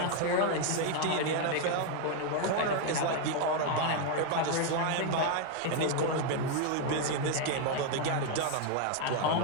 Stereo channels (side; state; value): both; different; correlation 0.01